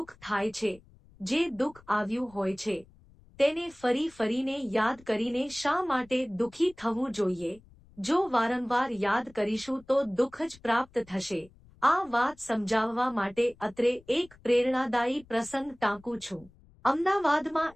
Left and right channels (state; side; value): noise; left; rumble, 26 dB below the sound